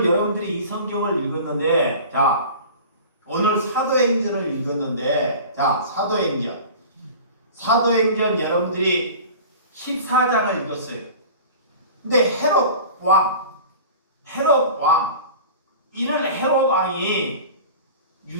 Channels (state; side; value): inverted; both; correlation -0.39